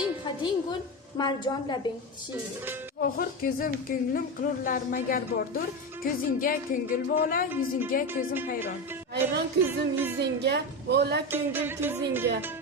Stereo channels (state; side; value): normal; both; correlation 0.18